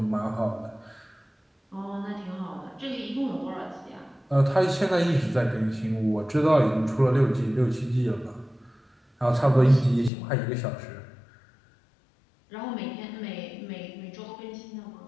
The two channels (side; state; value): right; drops out; at 10.1 s